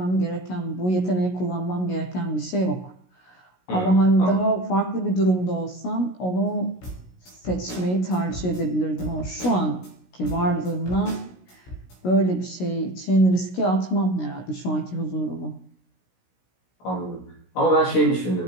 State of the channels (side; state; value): right; late; 16 ms